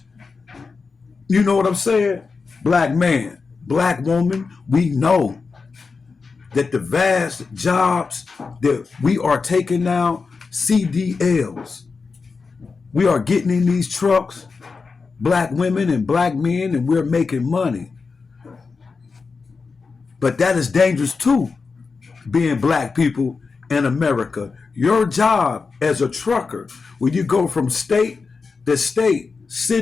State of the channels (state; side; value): quieter; right; 4.7 dB